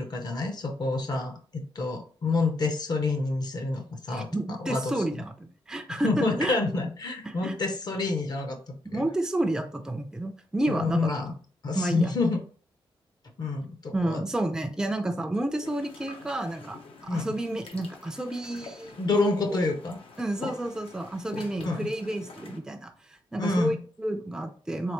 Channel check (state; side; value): normal; both; correlation 0.80